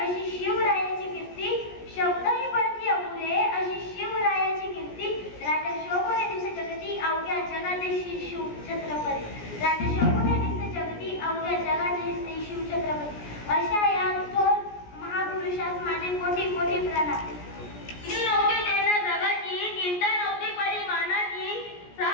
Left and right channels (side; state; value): right; late; 17 ms